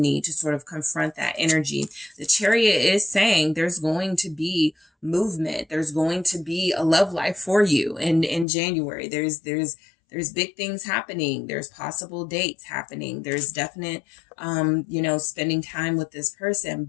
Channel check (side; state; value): right; drops out; at 8.5 s